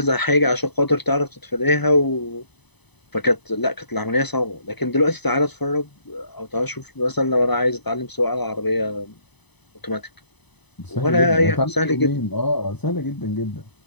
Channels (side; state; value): right; late; 0.99 ms